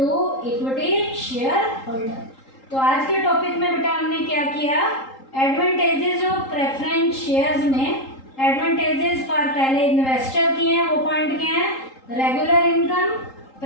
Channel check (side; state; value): right; late; 3.8 ms